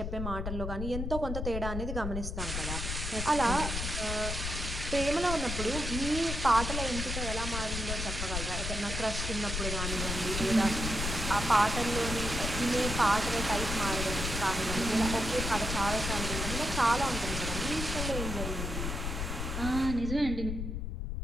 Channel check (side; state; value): left; noise; rumble, 3 dB below the sound